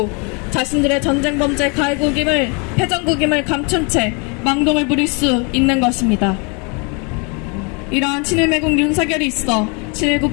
자신들의 전쟁 범죄 가해국임을 패전국임을 감춘 채 망동을 부릴 수 있는 것입니다. 이러한 친일매국 윤석열이 있어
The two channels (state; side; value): quieter; right; 33.1 dB